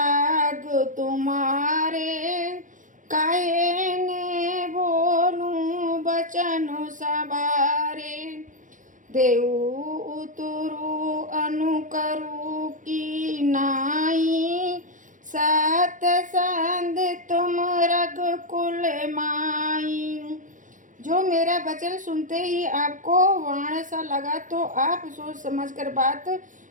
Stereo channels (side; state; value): left; late; 0.37 ms